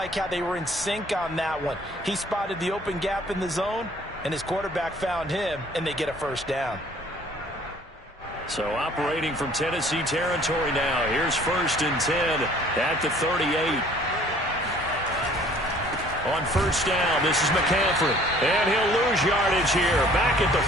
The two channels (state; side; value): normal; both; correlation 0.55